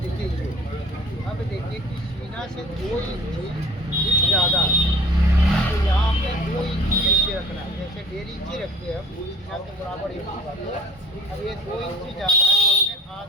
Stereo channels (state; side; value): normal; both; correlation 0.47